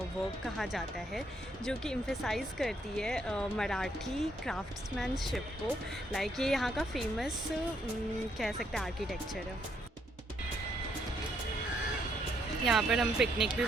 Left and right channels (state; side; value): normal; both; correlation 0.73